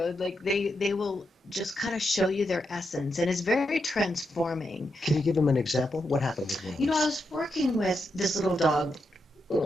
will just kind of show you their essence, and it's very transforming. Can you give them an example? What happened with one? I was working with this little dog,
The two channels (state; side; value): normal; both; correlation 0.84